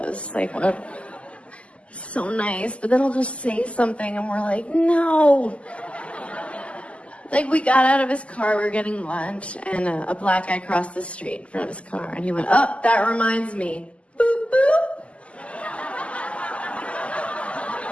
Like, what? So nice, but then he'll just say something and we're like, no. Like, we got out of his car, we were getting lunch, and a black guy crossed the street in front of his car, and he went, oh, that reminds me. Boop, boop.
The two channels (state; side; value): late; right; 0.059 ms